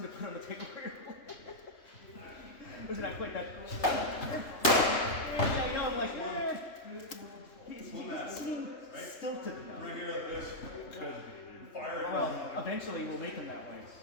to put on the table for your Was it not quite that? I know, I'm like, he doesn't seem stilted enough. Right here like this. Fire it. Well, eventually we'll make him that way.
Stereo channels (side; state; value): right; late; 3.2 ms